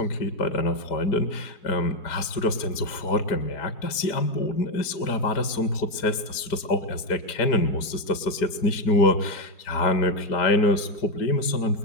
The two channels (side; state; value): right; late; 5.0 ms